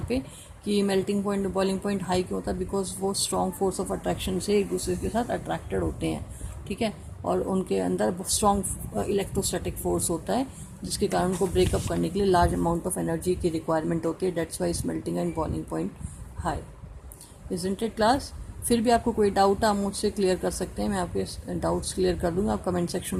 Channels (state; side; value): identical; both; correlation 1.00